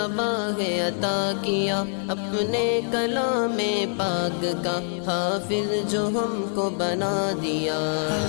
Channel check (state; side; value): silent; right; digital silence